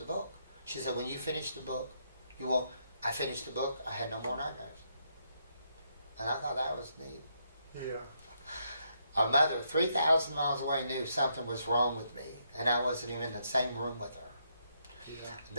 book. She said, when you finish the book, you won't. I finished the book. I had no more nightmares. And I thought that was neat. Yeah. Our mother, 3,000 miles away, knew something was wrong with me, and I wasn't even in the same room with her.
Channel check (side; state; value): both; inverted; correlation -0.76